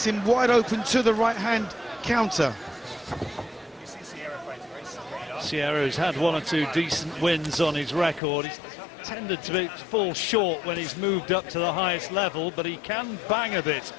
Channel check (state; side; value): drops out; right; at 8.2 s